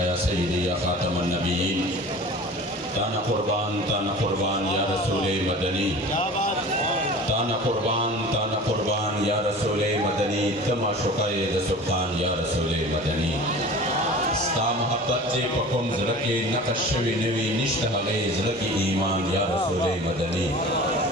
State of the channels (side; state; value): both; normal; correlation 0.39